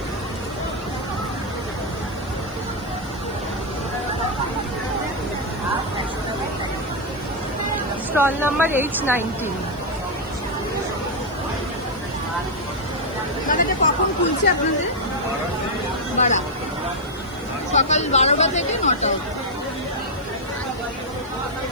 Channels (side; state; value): left; noise; hiss, 27 dB below the sound